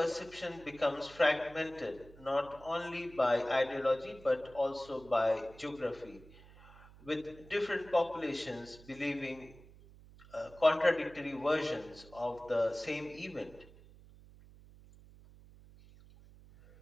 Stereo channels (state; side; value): noise; right; hum, 21 dB below the sound